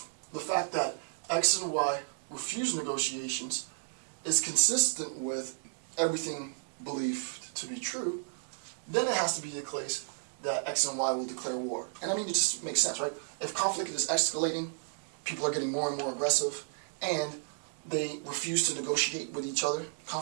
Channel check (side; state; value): left; silent; digital silence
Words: X and Y refuse negotiations is consistent with everything believed to be true, then it has to be the case that X and Y will declare war. And I mean, it just makes sense, right? If conflict is escalating, people are getting more and more aggressive, and they refuse to negotiate with each other,